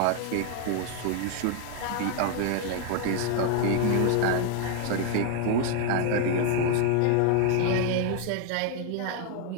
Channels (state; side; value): different; both; correlation 0.00